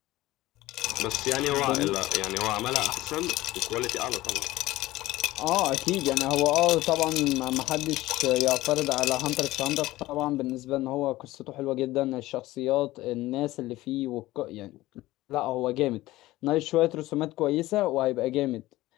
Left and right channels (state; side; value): quieter; right; 17.4 dB